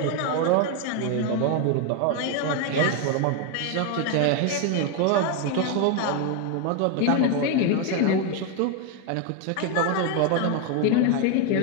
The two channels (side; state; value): both; different; correlation 0.01